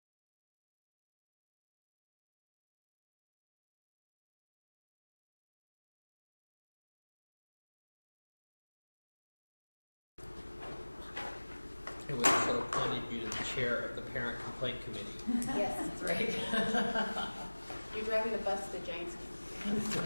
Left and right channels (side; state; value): both; inverted; correlation -1.00